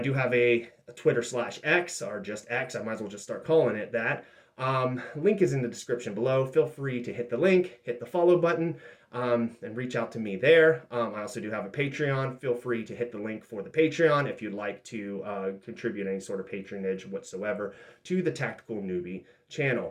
have a Twitter/X, or just X, I might as well just start calling it that. Link is in the description below. Feel free to hit the link, hit the follow button, and reach out to me there. I also do have a Patreon. Feel free to hit the link for the Patreon if you'd like to contribute any sort of patronage whatsoever to the Tactical Newbie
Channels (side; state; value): both; identical; correlation 1.00